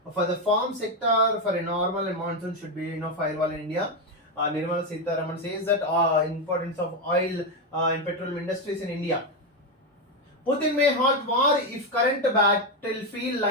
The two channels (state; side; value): normal; both; correlation 0.08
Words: for the farm sector for a normal and monsoon should be firewall in India. Nirmala Sitharaman says that importance of oil and petroleum industries in India. Putin may halt war if current battlefield